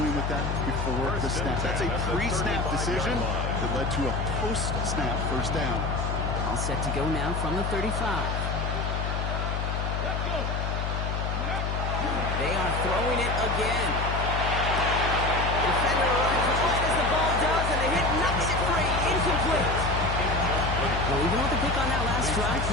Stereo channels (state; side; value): noise; left; hum, 1 dB below the sound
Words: with that before the snap. That's a pre-snap decision that led to a post-snap first down. All set to go now from the 35. They are throwing it again. Defender runs right as the ball does, and the hit knocks it free. Incomplete. Well, even with the pick on that last drive,